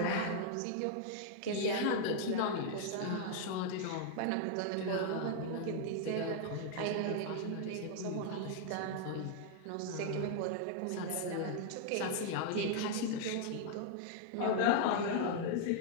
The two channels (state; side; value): different; both; correlation -0.01